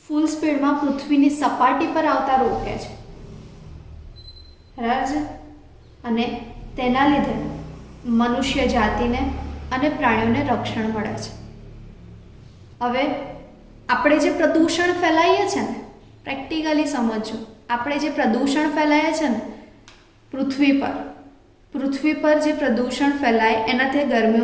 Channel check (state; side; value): identical; both; correlation 1.00